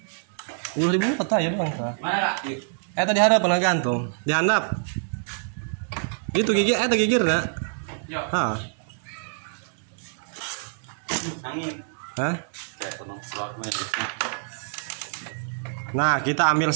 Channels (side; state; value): left; silent; 61 dB below the other